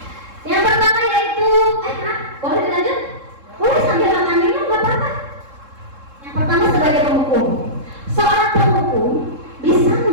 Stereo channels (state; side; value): late; left; 3.7 ms